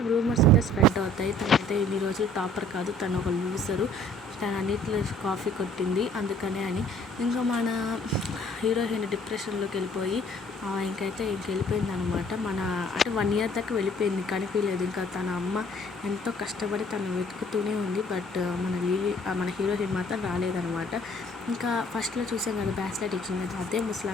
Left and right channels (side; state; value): both; normal; correlation 0.56